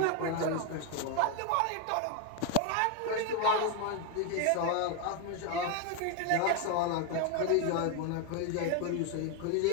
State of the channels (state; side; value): different; both; correlation 0.01